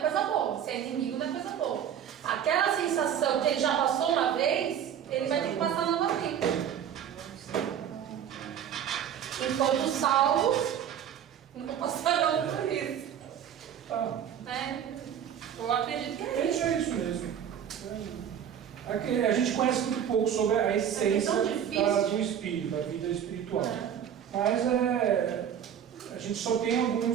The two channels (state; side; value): quieter; left; 9.1 dB